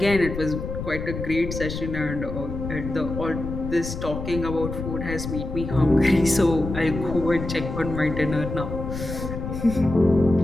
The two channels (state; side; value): noise; left; rumble, 6 dB below the sound